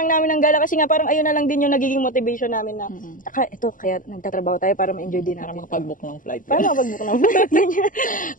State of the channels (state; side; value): late; right; 0.39 ms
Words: namin ng gala kasi nga parang ayun na lang din yung nagiging motivation namin na, kaya nagtatrabaho tayo para ma-enjoy din natin. Para makapag-book ng flight.